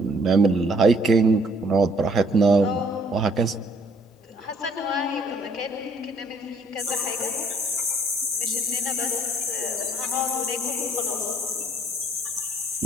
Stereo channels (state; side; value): normal; both; correlation 0.62